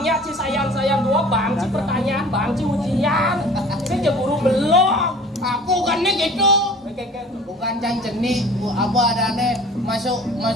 si sayang-sayang 2, bang si pertanyaan, bang si ujian. Saya je guru belum. Aku kan nih gitu. Bukan cang jenik, apa adanya masuk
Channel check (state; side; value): normal; both; correlation 0.45